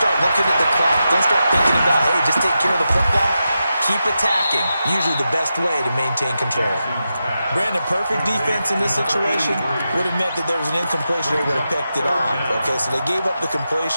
looking at the clock. Don't start thinking about, hey, just take care of the football. Keep attacking. Usually the best way to maintain control. Brandon, perfect defense in this situation would have meant that there was an incompletion. They would have picked it off. Okay, so they gave up the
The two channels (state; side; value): inverted; both; correlation -0.89